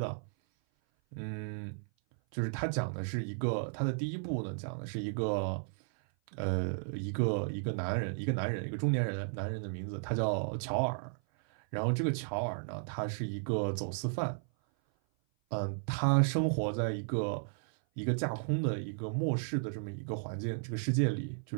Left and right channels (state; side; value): silent; left; 55 dB below the other